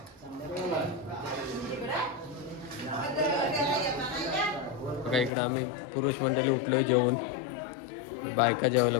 बघा इकडं आम्ही पुरुष मंडळी उठलो जेवून बायका जेवायला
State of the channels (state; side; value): drops out; right; at 5.3 s